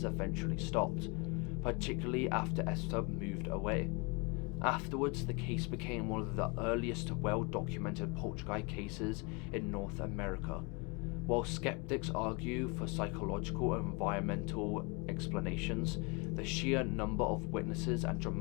eventually stopped, particularly after Esther moved away. Afterwards, the case became one of the earliest well-documented poltergeist cases in North America. While skeptics argue for psychological and environmental explanations, the sheer number of witnesses and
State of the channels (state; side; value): quieter; right; 30.2 dB